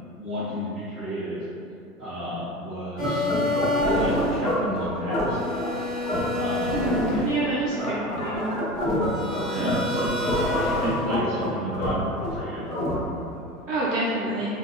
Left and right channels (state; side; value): normal; both; correlation 0.32